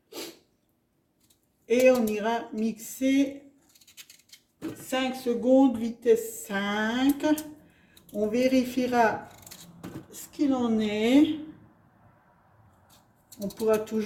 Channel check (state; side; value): identical; both; correlation 1.00